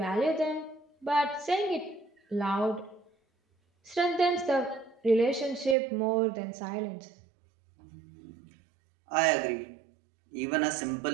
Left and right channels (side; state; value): left; drops out; at 5.8 s